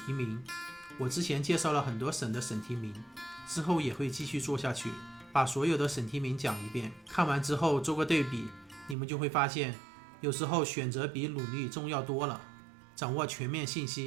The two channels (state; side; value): drops out; left; at 9.0 s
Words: 提名，我之前介绍了很多省的省提名，之后也会继续做下去，把所有的省提名讲一遍，看完之后做个对比，你们就会发现有时候选择比努力重要多了。掌握全面信